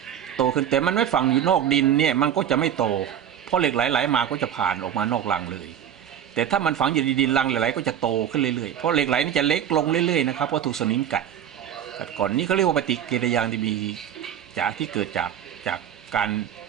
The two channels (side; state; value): left; quieter; 9.6 dB